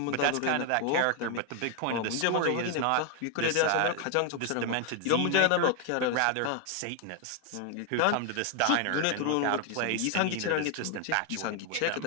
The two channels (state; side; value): different; both; correlation 0.01